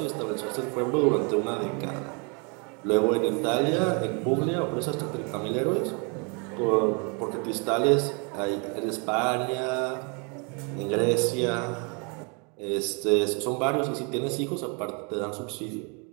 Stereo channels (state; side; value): quieter; left; 34.4 dB